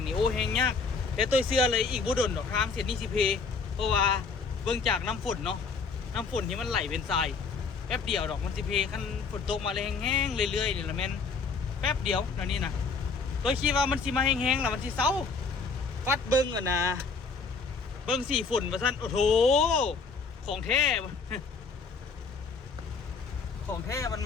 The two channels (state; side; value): quieter; right; 4.8 dB